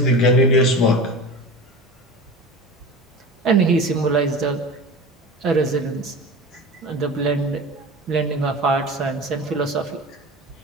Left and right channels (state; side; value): normal; both; correlation 0.32